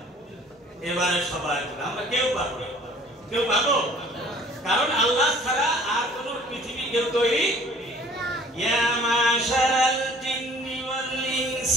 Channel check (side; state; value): both; normal; correlation 0.52